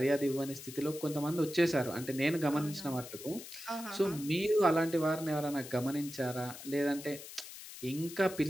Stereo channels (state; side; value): noise; left; hiss, 13 dB below the sound